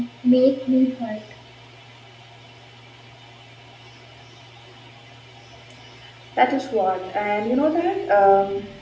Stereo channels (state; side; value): identical; both; correlation 1.00